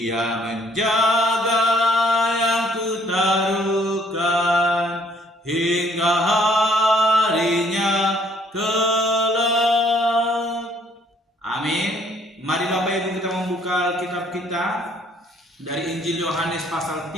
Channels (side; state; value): both; normal; correlation 0.63